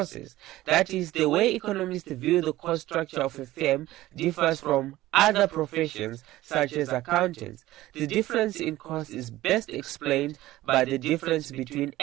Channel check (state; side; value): quieter; left; 16.3 dB